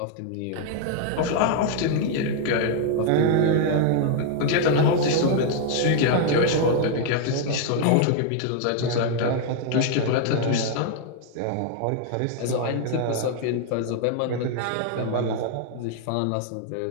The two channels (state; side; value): different; both; correlation 0.00